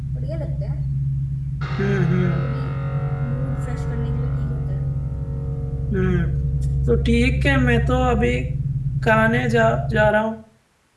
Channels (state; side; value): identical; both; correlation 1.00